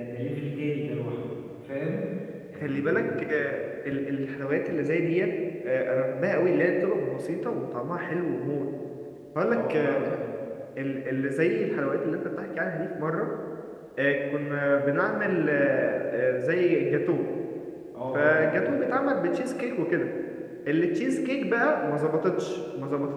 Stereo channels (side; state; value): both; identical; correlation 1.00